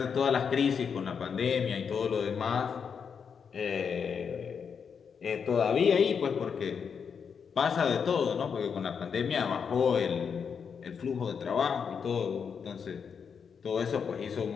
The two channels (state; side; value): quieter; right; 6.6 dB